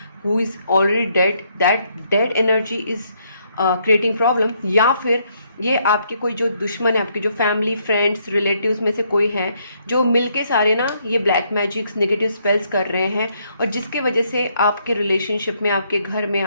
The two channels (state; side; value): inverted; both; correlation -0.72